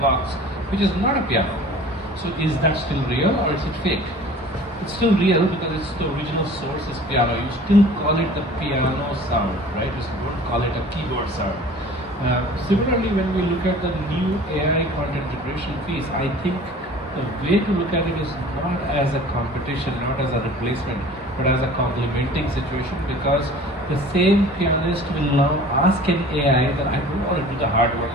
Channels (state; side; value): normal; both; correlation 0.45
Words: which is not a piano. So is that still real or is it fake? It's still real because it's the original source is piano. You still call it the piano sound, right? You don't call it a keyboard sound. Similarly, when we look at the new AI content generation piece, I think the way to look at it is not as a competition, not as a replacement, but as a complementing situation, because the same pianist will now ask an AI that I don't want to do the hard work